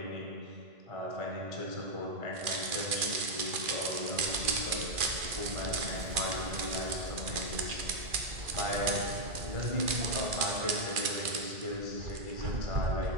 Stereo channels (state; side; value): late; left; 2.4 ms